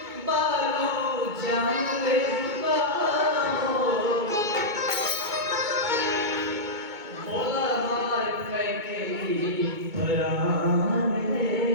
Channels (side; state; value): left; late; 2.2 ms